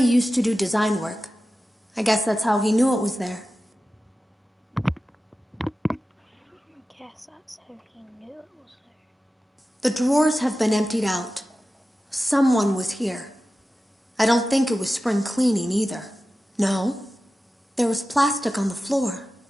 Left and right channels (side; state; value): both; normal; correlation 0.94